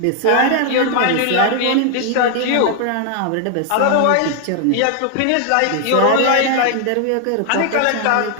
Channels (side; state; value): both; different; correlation 0.00